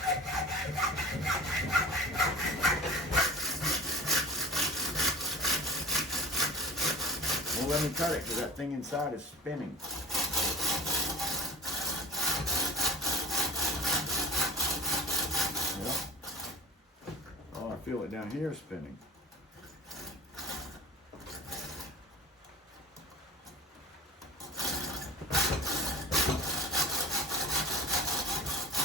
Well, let me cut it because that thing inside is spinning. Yep. Oh, I feel it down here spinning.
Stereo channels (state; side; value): normal; both; correlation 0.38